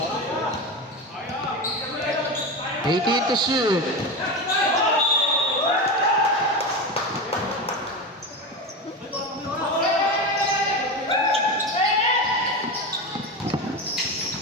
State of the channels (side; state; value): both; normal; correlation 0.21